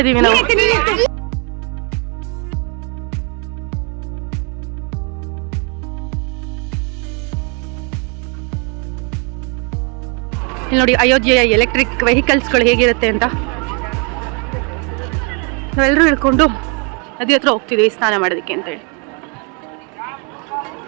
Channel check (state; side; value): quieter; left; 35.2 dB